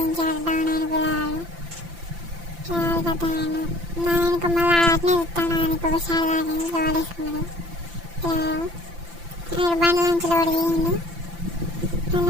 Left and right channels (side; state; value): left; late; 5.9 ms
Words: డౌన్ అయిన పిల్లవాడు కథ నా వెనుక మళ్ళీ అట్నే చూస్తాను. ఆయనకి ఒకసారి తాకింది లోడేసుకున్నాడు. బండి నుంచి లోడు దిగిండు.